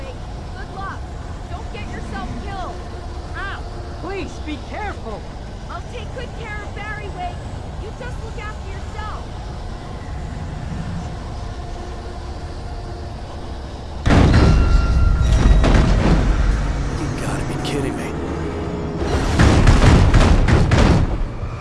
Good luck. Don't get yourself killed. Ow! Please, be careful. I'll take good care of Barry, Wake. You just look after yourself. You gotta be kidding me.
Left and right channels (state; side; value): identical; both; correlation 1.00